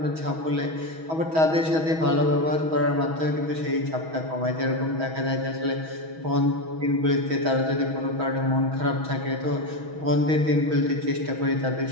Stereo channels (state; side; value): late; left; 6.2 ms